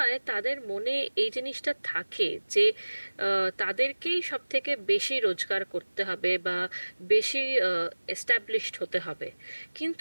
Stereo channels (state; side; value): inverted; both; correlation -1.00